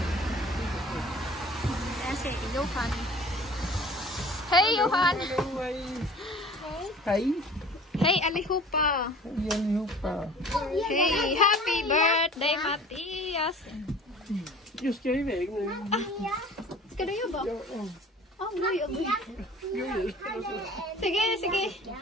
Ayan si Johan. Hey Johan. Hey. Hey Alihupa. Hey, happy birthday Matias. Just ska iväg nu. Ska du jobba? Oh, gud. Sige.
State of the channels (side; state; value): both; normal; correlation 0.46